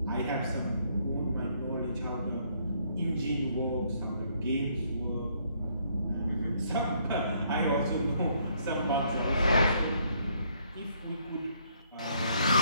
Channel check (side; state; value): both; inverted; correlation -0.68